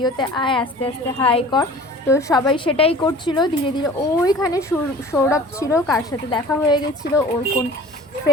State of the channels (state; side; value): normal; both; correlation 0.44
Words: আয়, আস্তে আস্তে হাই কর। তো সবাই সেটাই করছিল ধীরে ধীরে। ওইখানে সৌরভ ছিল, কার সাথে দেখা হয়ে গেছিলো ওর কোন